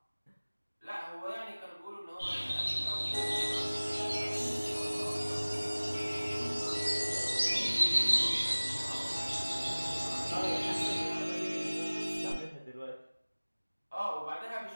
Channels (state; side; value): inverted; both; correlation -1.00